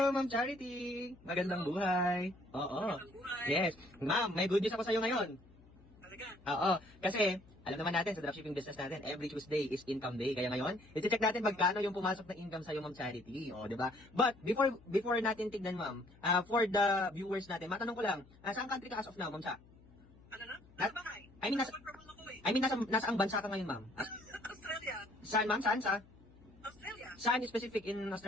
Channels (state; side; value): noise; left; hum, 24 dB below the sound